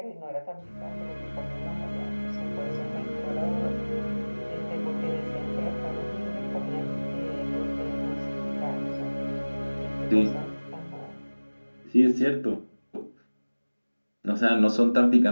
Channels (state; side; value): inverted; both; correlation -1.00